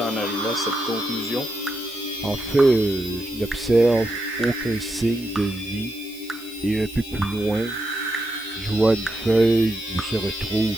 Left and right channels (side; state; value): right; noise; hiss, 21 dB below the sound